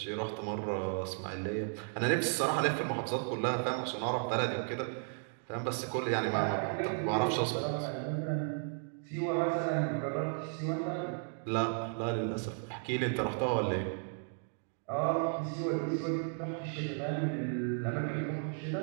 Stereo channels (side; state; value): left; silent; 55 dB below the other